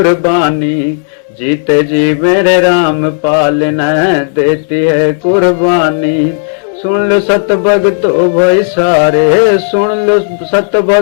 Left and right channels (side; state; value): right; silent; digital silence